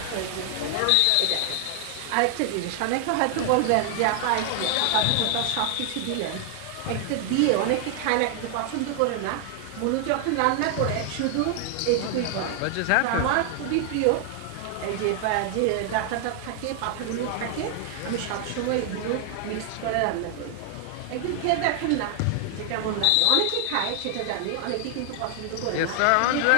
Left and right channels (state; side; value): different; both; correlation 0.00